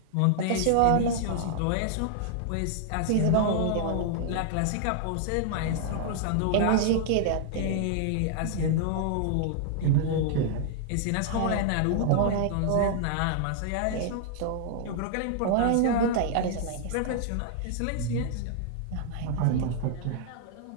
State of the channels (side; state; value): both; different; correlation -0.01